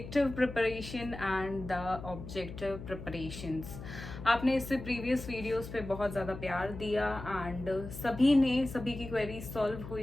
preparation and the objective preparations. आपने इससे previous videos पे बहुत ज़्यादा प्यार दिया एंड सभी की क्वेरी सॉल्व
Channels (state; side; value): noise; left; hum, 11 dB below the sound